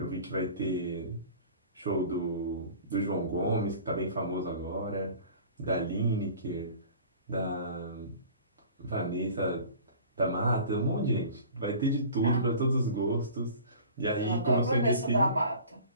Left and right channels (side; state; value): both; inverted; correlation -0.44